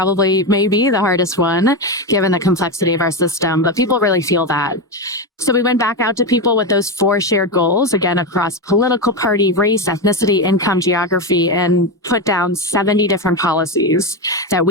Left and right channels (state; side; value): normal; both; correlation 0.13